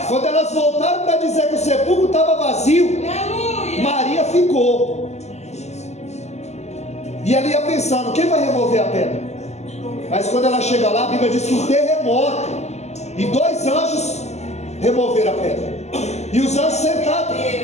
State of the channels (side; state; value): right; late; 0.33 ms